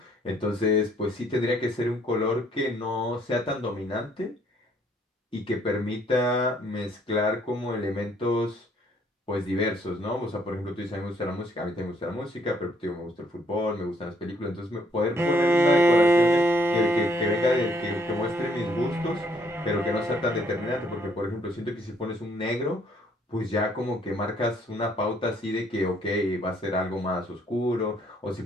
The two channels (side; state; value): both; normal; correlation 0.66